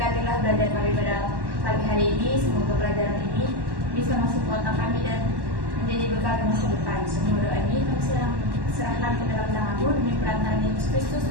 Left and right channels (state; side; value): late; left; 1.1 ms